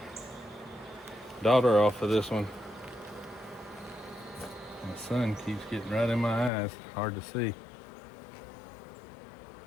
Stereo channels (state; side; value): drops out; right; at 6.5 s